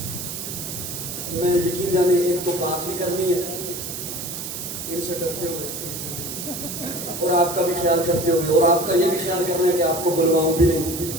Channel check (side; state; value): right; noise; hiss, 7 dB below the sound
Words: میں یقین جانے ایک تو بات بھی کرنی ہے ان سے کرتے ہوئے اور آپ کا بھی خیال کرتے ہوئے، اور آپ کا یہ بھی خیال کرنا ہے کہ آپ کو بلواؤں بھی نہیں،